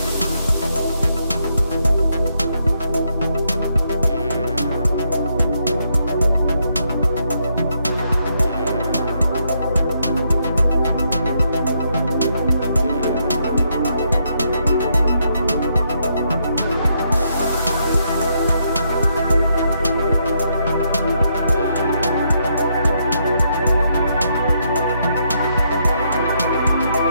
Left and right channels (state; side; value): inverted; both; correlation -0.77